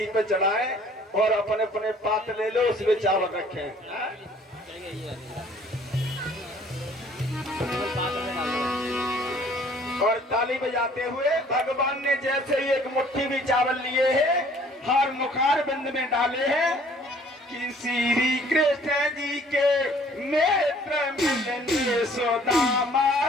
पे चढ़ाए और अपने अपने पात्र ले लो उसमें चावल रखें। और ताली बजाते हुए भगवान ने जैसे ही एक मुट्ठी भी चावल लिए हैं हर मुखार बिंद में डाले हैं कि श्री कृष्ण जी के नेत्र मिलने सुदामा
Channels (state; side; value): normal; both; correlation 0.56